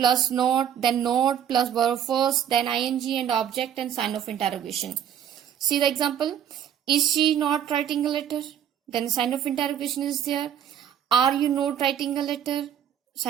not, then not plus verb first, then ing and object and sign of interrogation. See the example. Is she not writing a letter? Then sign of interrogation is there. Are you not writing a letter?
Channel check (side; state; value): left; quieter; 9.4 dB